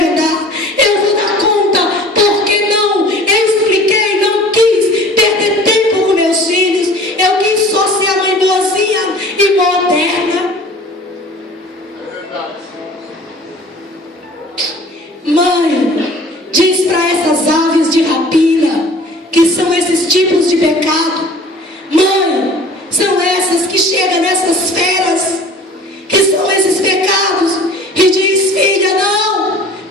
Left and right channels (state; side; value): normal; both; correlation 0.46